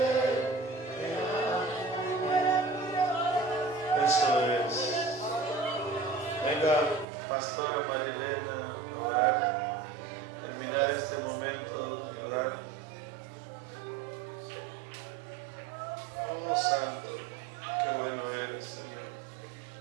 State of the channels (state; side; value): drops out; left; at 7.1 s